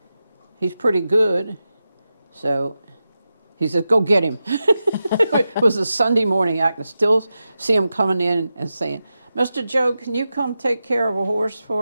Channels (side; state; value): both; inverted; correlation -0.91